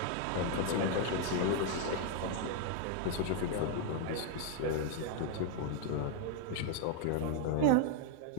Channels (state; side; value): different; both; correlation 0.00